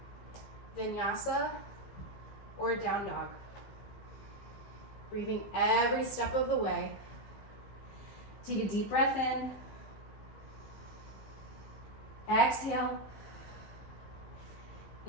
vinyasa. or down dog. Breathing every step of the way. Take a deep breath in. Exhale.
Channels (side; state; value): right; late; 15 ms